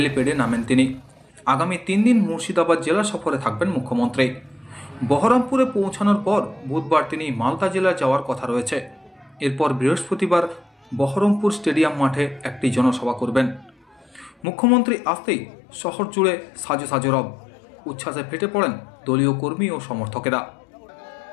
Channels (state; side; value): drops out; right; at 14.4 s